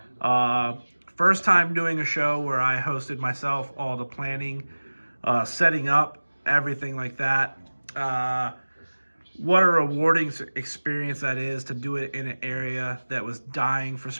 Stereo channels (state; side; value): inverted; both; correlation -1.00